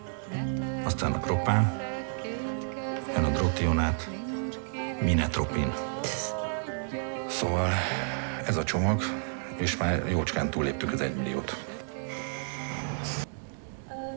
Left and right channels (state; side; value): silent; left; digital silence